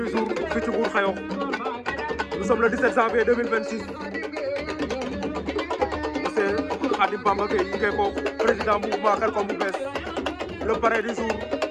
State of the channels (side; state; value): both; identical; correlation 1.00